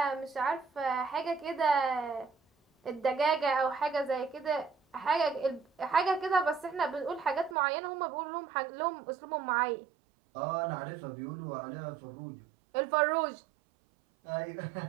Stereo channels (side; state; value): left; drops out; at 7.6 s